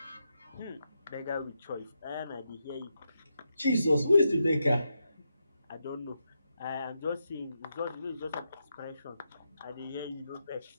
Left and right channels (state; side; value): inverted; both; correlation -0.85